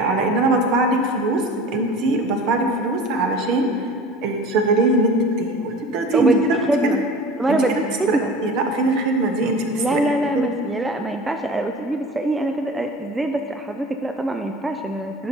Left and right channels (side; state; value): both; normal; correlation 0.39